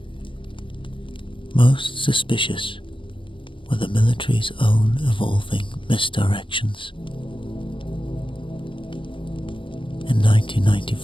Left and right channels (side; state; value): right; late; 0.25 ms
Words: Most suspicious were the military's own evolving misdirections. In